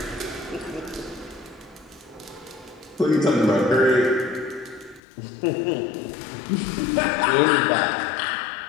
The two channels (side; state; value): right; drops out; at 5.0 s